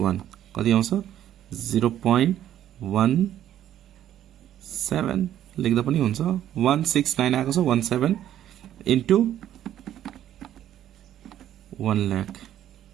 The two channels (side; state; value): left; quieter; 11.5 dB